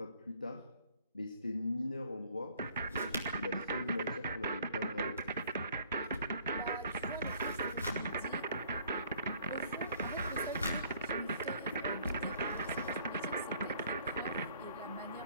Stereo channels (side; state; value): both; inverted; correlation -0.58